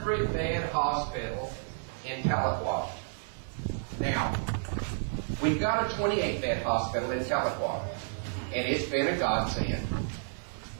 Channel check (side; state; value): left; silent; digital silence